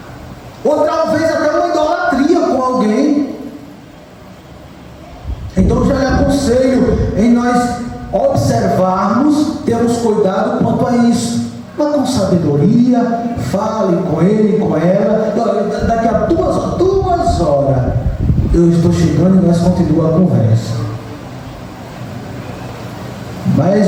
ou talvez até uma idolatria com alguém. Então eu já lhe aconselho em nós observarmos, termos cuidado quanto a isso. Mas com sabedoria, fale com ele, com ela. Daqui a 2 horas eu estou chegando e nós continuamos a conversa.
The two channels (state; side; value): identical; both; correlation 1.00